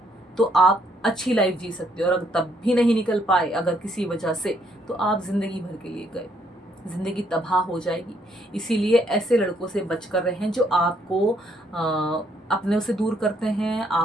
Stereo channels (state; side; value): normal; both; correlation 0.70